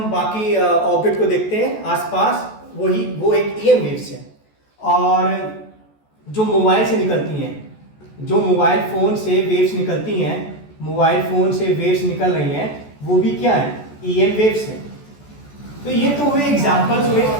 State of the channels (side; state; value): right; late; 14 ms